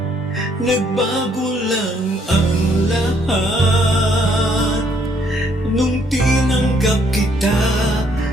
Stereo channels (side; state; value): both; normal; correlation 0.68